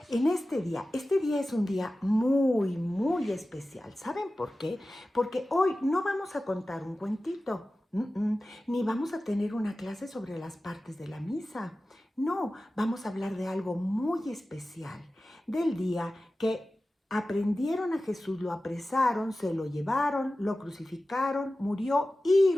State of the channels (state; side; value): normal; both; correlation 0.95